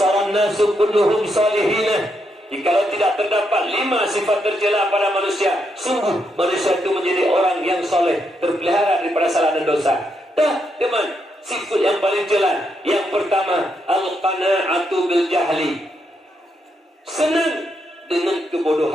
nasu kulluhum salihina. Jikalau tidak terdapat 5 sifat tercela pada manusia, sungguh manusia itu menjadi orang yang soleh, terpelihara daripada salah dan dosa. Dah, teman, sifat yang paling jelas. Yang pertama, al-qana'atu bil jahli. Senang dengan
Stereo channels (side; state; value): both; normal; correlation 0.80